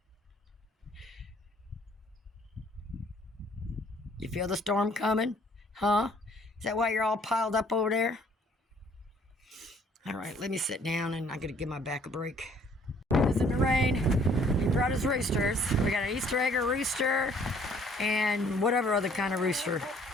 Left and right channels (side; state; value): both; normal; correlation 0.60